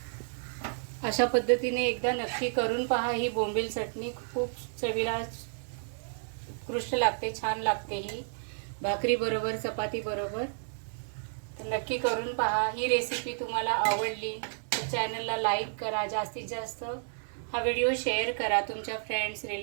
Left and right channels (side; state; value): left; silent; digital silence